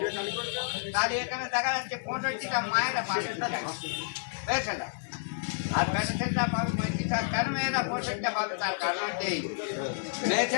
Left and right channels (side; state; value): right; silent; digital silence